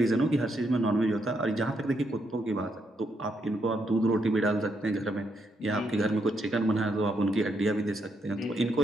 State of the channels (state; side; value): normal; both; correlation 0.78